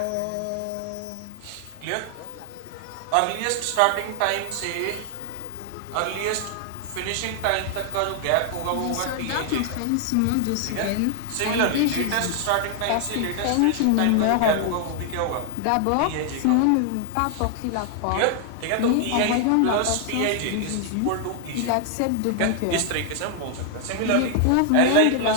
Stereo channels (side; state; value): both; different; correlation 0.00